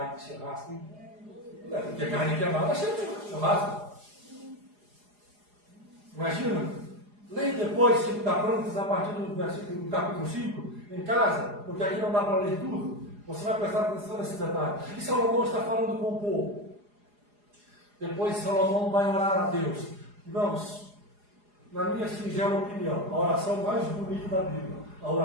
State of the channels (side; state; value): left; late; 4.8 ms